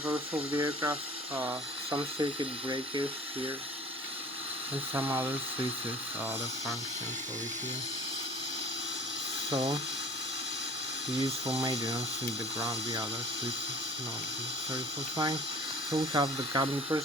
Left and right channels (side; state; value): both; normal; correlation 0.45